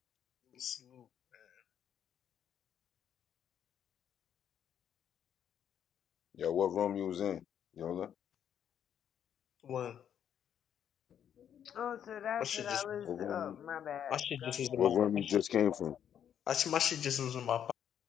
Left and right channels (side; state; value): right; quieter; 9.2 dB